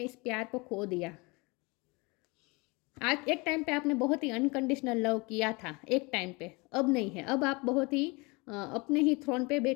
इस प्यार को खो दिया। आज एक टाइम पे आपने बहुत ही अनकंडीशनल लव किया था, एक टाइम पे, अब नहीं है। अब आप बहुत ही अपने ही थ्रोन पे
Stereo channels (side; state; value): right; quieter; 26.8 dB